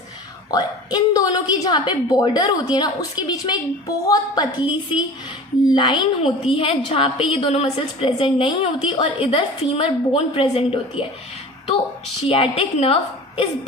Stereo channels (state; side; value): normal; both; correlation 0.39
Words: और इन दोनों की जहाँ पे बॉर्डर होती है ना उसके बीच में एक बहुत पतली सी लाइन होती है जहाँ पे ये दोनों मसल्स प्रेजेंट नहीं होती और इधर फीमर बोन प्रेजेंट होती है। तो सियाटिक नर्व इस